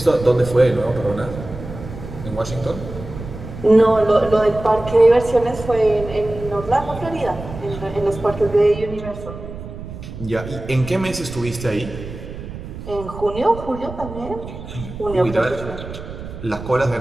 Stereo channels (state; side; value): noise; right; rumble, 11 dB below the sound